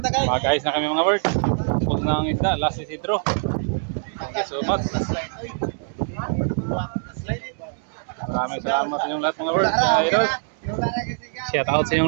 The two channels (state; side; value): silent; left; digital silence